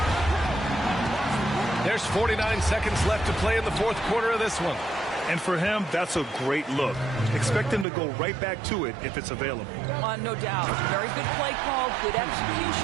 There's 49 seconds left to play in the 4th quarter of this one. And for him, that's a great look. Expect him to go right back to it if it's available. No doubt. Very good play call, good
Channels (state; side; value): drops out; left; at 7.9 s